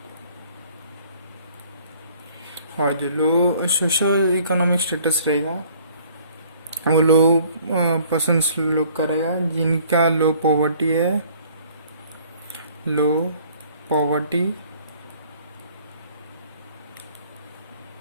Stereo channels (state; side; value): inverted; both; correlation -0.56